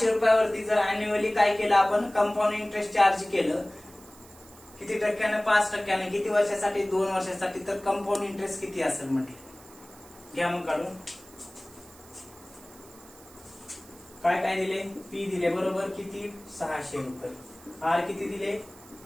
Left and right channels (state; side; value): noise; right; hiss, 22 dB below the sound